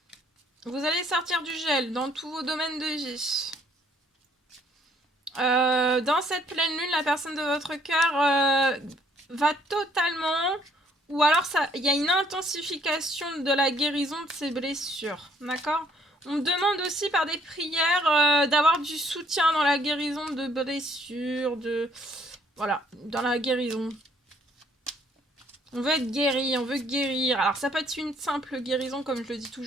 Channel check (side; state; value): both; normal; correlation 0.64